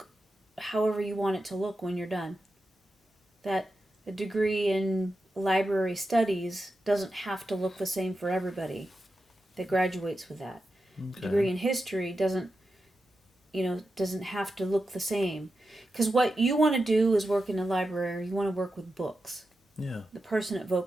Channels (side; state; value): both; normal; correlation 0.90